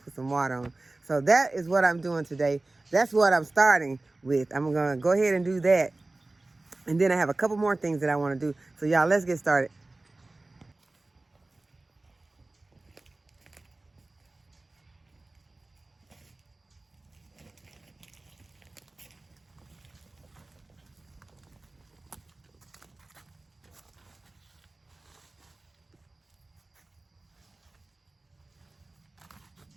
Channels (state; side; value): quieter; left; 3.0 dB